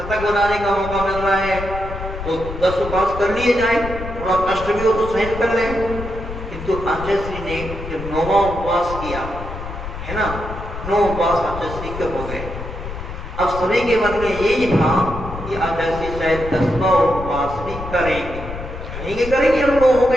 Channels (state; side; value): noise; left; rumble, 9 dB below the sound